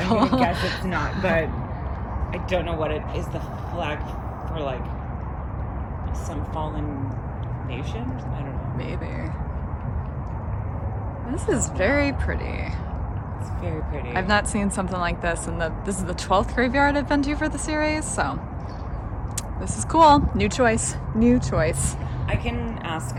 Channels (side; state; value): both; identical; correlation 1.00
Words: I'm gonna guess it's not, but I don't know what it is. The flag for like some fallen nation? I don't know. Maybe. This is very pretty. It's very pretty. I've not seen something like this, and this is the 12th graveyard I've been to for the series, so this is cool. New choice. I can ask